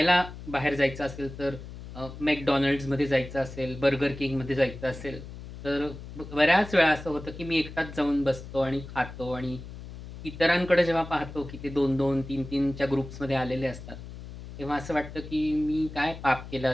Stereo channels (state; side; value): noise; left; hum, 13 dB below the sound